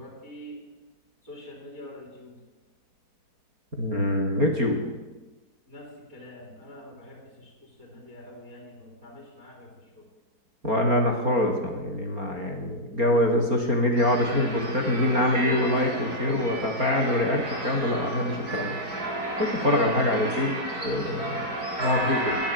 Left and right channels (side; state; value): left; late; 4.3 ms